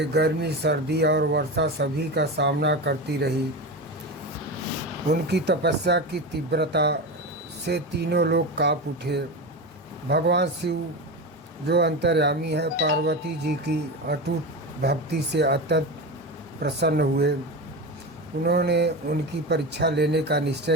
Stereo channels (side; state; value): both; normal; correlation 0.22